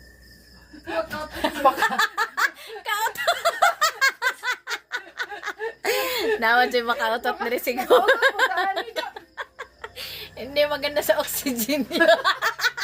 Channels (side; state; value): both; identical; correlation 1.00